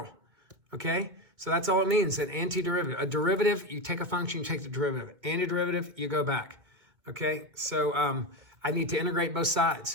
okay? So that's all it means, an antiderivative. A derivative, you take a function, you take the derivative. Antiderivative, you go back, okay? So I need to integrate both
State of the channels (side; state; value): left; late; 2.2 ms